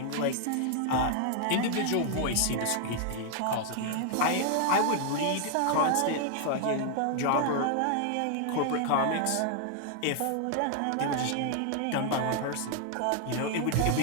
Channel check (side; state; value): both; different; correlation 0.00